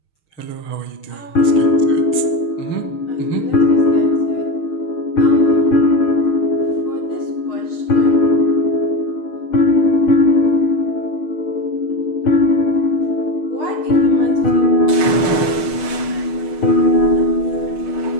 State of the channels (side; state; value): right; late; 6.5 ms